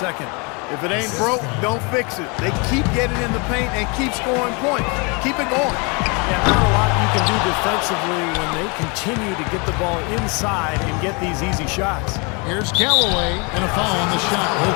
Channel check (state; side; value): quieter; right; 31.4 dB